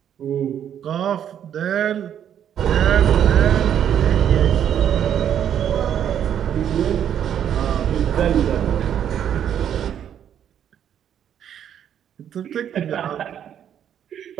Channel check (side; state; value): left; quieter; 9.5 dB